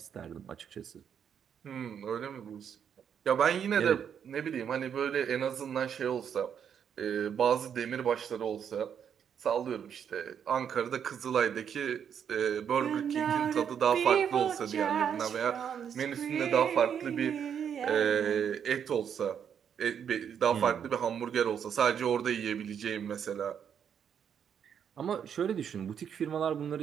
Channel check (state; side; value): quieter; left; 8.1 dB